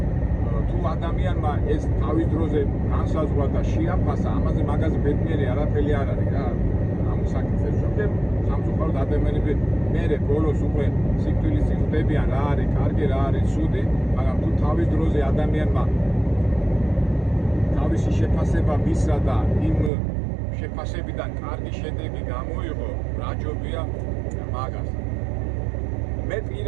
თუ ადამიანმა ეს თავის დროზე განსაზღვრა და შეაფასა, ამაზე მაგაზე ბედნიერი არაფერი არ არის რა. ამ საკითხებს ზოგჯერ სამწუხაროდ ადამიანები მერე ბოლოს უკვე სიკვდილის იღებიან, რა არის კარგი, რა არის ცუდი, მაგრამ თუ თავის დროზე ადამიანმა თავისი შეფასება მისცა და იმ შეფასებიდან კარგი შედეგი გამოიღო, რაჯობია მაგას. მე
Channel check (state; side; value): drops out; left; at 19.9 s